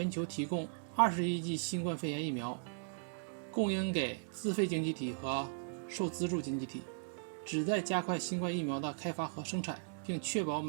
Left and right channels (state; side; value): silent; left; digital silence